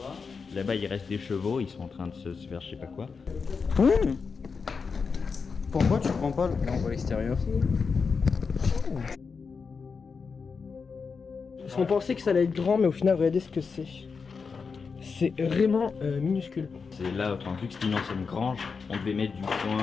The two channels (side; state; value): right; quieter; 5.2 dB